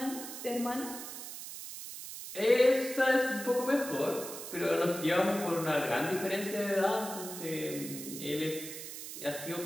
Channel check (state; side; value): noise; right; hiss, 9 dB below the sound